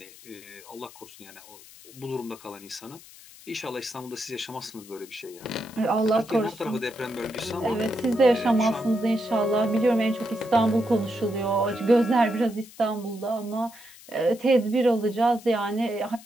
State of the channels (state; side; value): noise; left; hiss, 20 dB below the sound